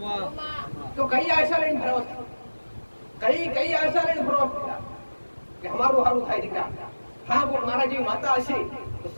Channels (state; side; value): inverted; both; correlation -1.00